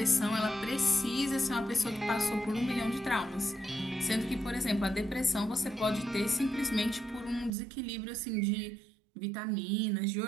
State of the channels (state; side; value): drops out; left; at 7.5 s